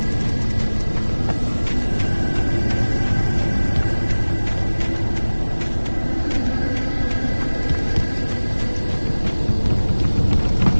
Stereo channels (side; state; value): both; inverted; correlation -1.00